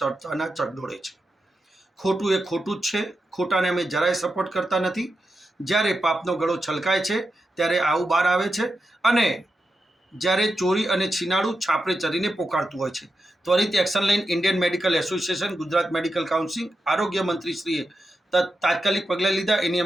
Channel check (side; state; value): both; normal; correlation 0.88